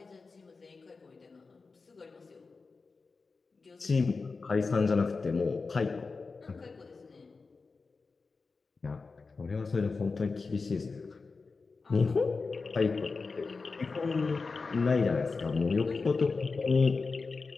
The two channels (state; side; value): quieter; right; 4.3 dB